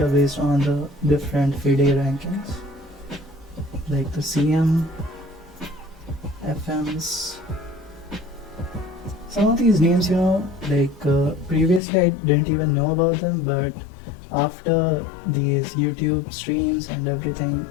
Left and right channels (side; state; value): right; drops out; at 11.8 s